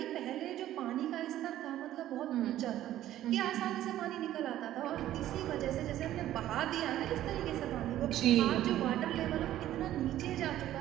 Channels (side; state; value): left; quieter; 13.1 dB